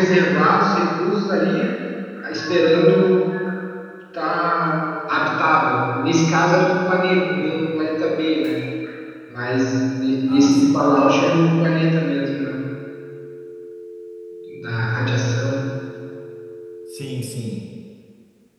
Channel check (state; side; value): identical; both; correlation 1.00